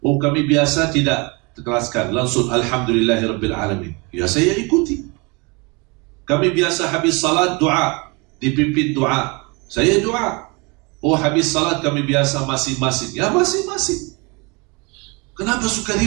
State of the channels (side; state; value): left; quieter; 28.8 dB